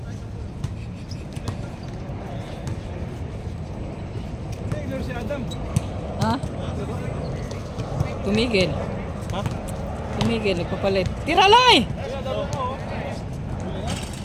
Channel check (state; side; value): identical; both; correlation 1.00